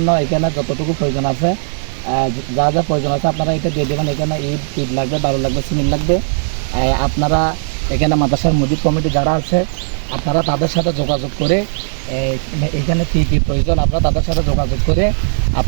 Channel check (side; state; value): left; silent; 69 dB below the other